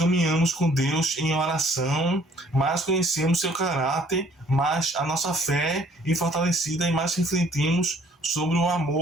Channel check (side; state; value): both; normal; correlation 0.59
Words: com Deus em oração, mais conhecemos seu caráter, mais a nossa fé é fortalecida e mais refletimos sobre o